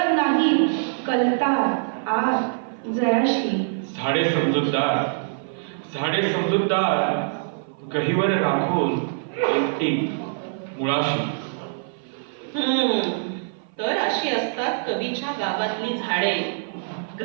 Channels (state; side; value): silent; left; 55 dB below the other